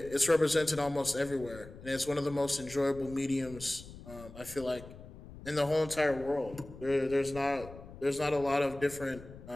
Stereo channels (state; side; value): noise; left; rumble, 16 dB below the sound